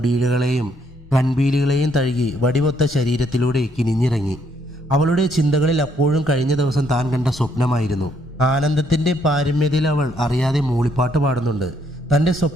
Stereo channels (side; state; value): both; normal; correlation 0.71